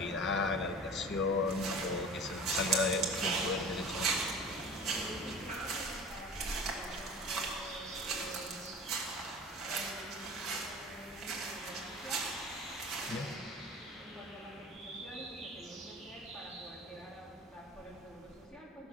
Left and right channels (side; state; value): both; normal; correlation 0.39